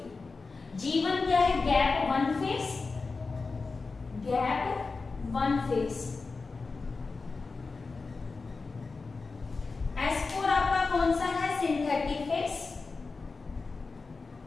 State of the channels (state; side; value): quieter; right; 4.1 dB